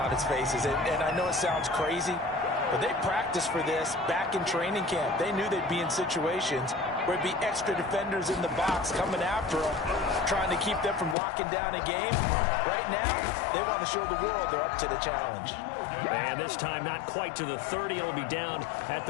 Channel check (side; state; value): right; drops out; at 11.2 s